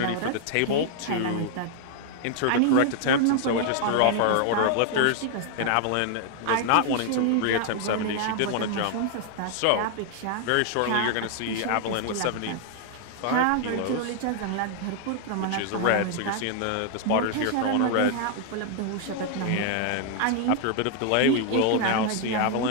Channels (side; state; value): both; different; correlation 0.00